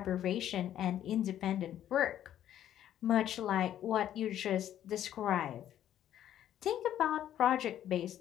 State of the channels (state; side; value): quieter; right; 11.3 dB